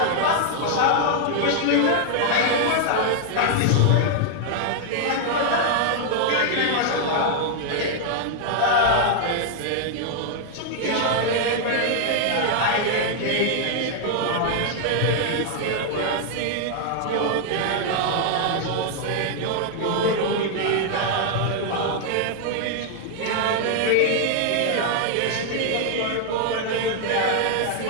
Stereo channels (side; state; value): both; different; correlation 0.00